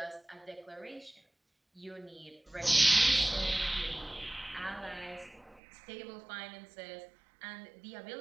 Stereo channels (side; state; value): left; drops out; at 5.6 s